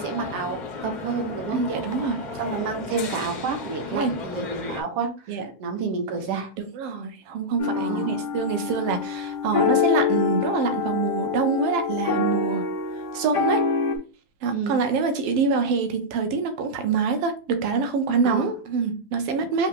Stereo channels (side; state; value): left; late; 7.5 ms